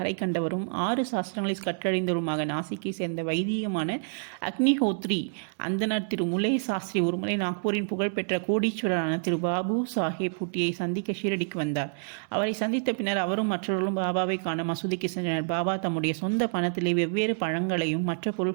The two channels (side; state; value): left; silent; digital silence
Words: கண்டவரும் 6 சாஸ்திரங்களை கற்றறிந்தவருமாக நாசிக்கை சேர்ந்த வைதிகமான அக்னிஹோத்ரி அந்தனர் திரு முலே சாஸ்திரி ஒருமுறை நாக்பூரின் புகழ்பெற்ற கோடீஸ்வரரான திரு பாபு சாஹேப் பூட்டியை சந்திக்க ஷீரடிக்கு வந்தார். அவரை சந்தித்த பின்னர் அவரும் மற்றவர்களும் பாபாவை காண மசூதிக்கு சென்றனர். பாபா தம்முடைய சொந்த பணத்திலே வெவ்வேறு பழங்களையும் மற்ற